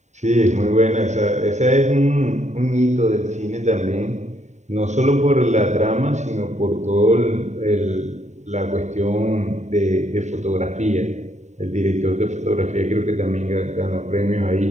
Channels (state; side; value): late; left; 0.34 ms